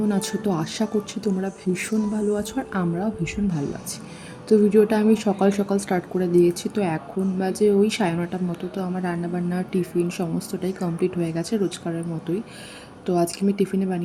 আছো? তো আশা করছি তোমরা ভীষণ ভালো আছো আর আমরাও ভীষণ ভালো আছি। তো ভিডিওটা আমি সকাল সকাল স্টার্ট করে দিয়েছি। তো এখন বাজে ওই 9:30টার মতো। তো আমার রান্নাবান্না টিফিন সমস্তটাই কমপ্লিট হয়ে গেছে রোজকারের মতোই। তো আজকে আমি টিফিনে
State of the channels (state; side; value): identical; both; correlation 1.00